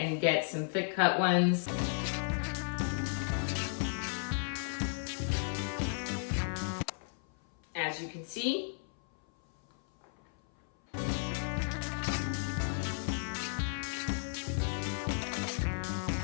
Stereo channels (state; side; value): silent; right; 55 dB below the other